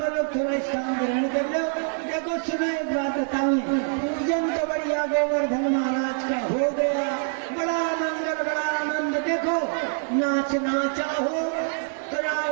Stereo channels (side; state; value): left; silent; 62 dB below the other